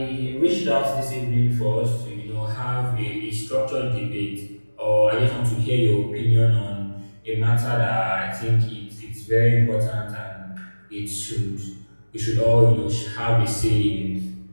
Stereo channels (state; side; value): inverted; both; correlation -1.00